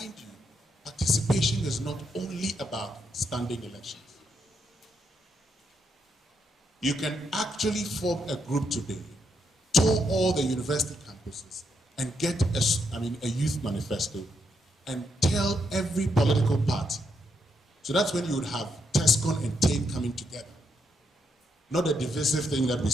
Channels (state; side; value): normal; both; correlation 0.79